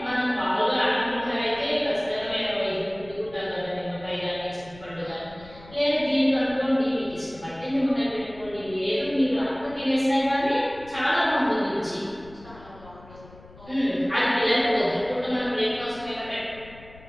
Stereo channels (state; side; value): noise; left; rumble, 21 dB below the sound